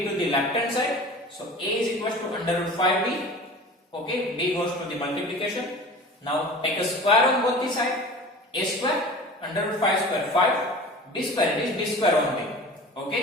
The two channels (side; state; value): both; normal; correlation 0.38